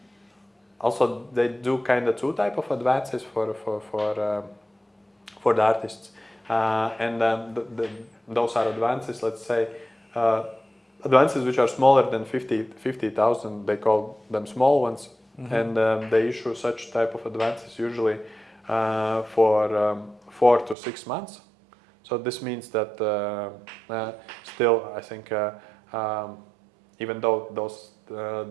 also they do kind of two type of advances for the artists, and those are advances, let's say, advances which are smaller than 50,000, they call them small ones, and they issue such type of advances usually for 4 to 6 months. So this means that still, I think, even though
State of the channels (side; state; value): left; drops out; at 20.8 s